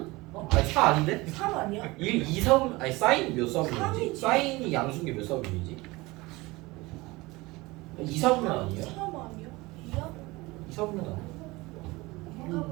아니 4 아닌데? 3 아니야? 1, 2, 3 아니 사인 몇 사분이지? 삼이지. 사인이 양수인 게 몇 사분이지? 2, 4분면 아니야? 3 아니야? 2야? 2, 4분면 아니야? 인가봐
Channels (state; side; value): quieter; left; 21.9 dB